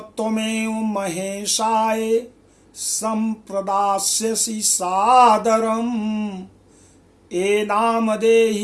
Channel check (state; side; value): identical; both; correlation 1.00